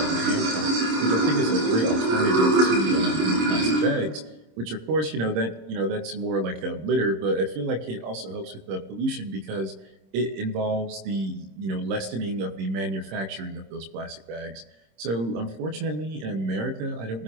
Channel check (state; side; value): late; left; 26 ms